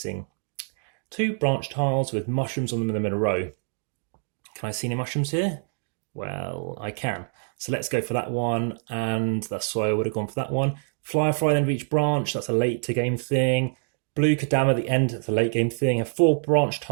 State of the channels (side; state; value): left; silent; 61 dB below the other